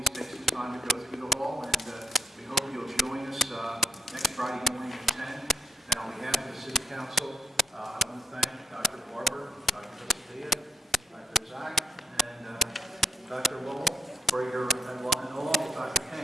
take some time to go through the hall, and we hope you'll join us next Friday morning at 10. And on behalf of the City Council,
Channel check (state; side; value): normal; both; correlation 0.76